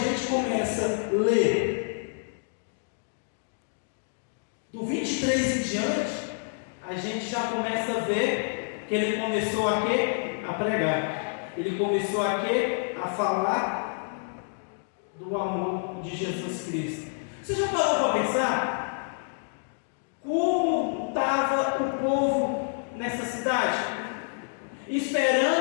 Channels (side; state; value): right; silent; digital silence